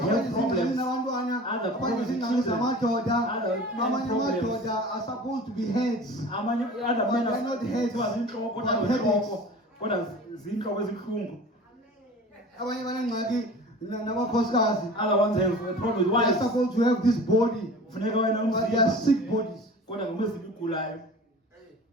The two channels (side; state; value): both; normal; correlation 0.40